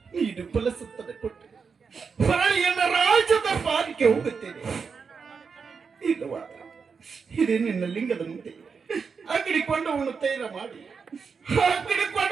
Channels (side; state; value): left; quieter; 5.6 dB